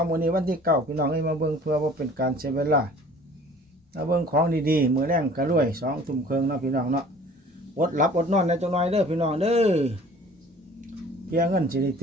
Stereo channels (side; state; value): both; normal; correlation 0.49